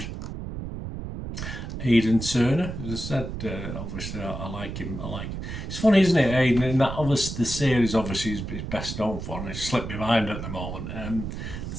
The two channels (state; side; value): noise; right; rumble, 7 dB below the sound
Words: Aidan Turner, as I said, obviously I like him. It's funny, isn't it, Aidan? In that, obviously, the series obviously is best known for, and it's slipped my mind at the moment.